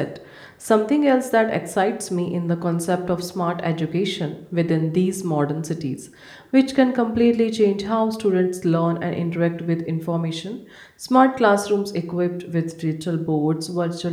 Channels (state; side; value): identical; both; correlation 1.00